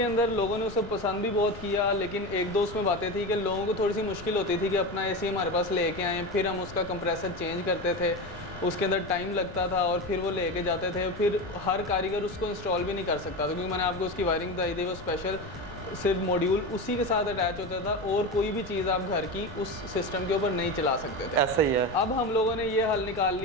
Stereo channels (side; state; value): left; noise; rumble, 14 dB below the sound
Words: अंदर लोगों ने उसे पसंद भी बहुत किया, लेकिन एक दो उसमें बातें थी कि लोगों को थोड़ी सी मुश्किल होती थी कि अपना एसी हमारे पास लेके आएँ, फिर हम उसका कंप्रेसर चेंज करते थे, उसके अंदर टाइम लगता था, और फिर वो लेके जाते थे, फिर हर कारीगर उसको इंस्टॉल भी नहीं कर सकता था, क्योंकि मैंने आपको उसकी वायरिंग बताई थी, वो स्पेशल सिर्फ मॉड्यूल उसी के साथ अटैच होता था, और कोई भी चीज़ आप घर की उस सिस्टम के ऊपर नहीं चला सकते थे। ऐसा ही है। अब हम लोगों ने ये हल निकाल